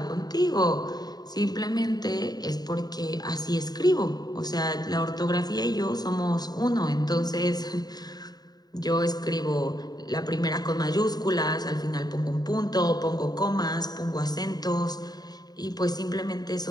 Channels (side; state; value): right; late; 0.19 ms